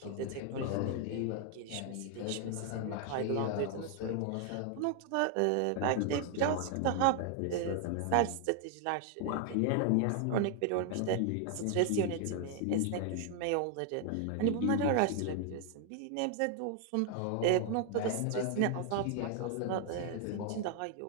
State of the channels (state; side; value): different; both; correlation 0.00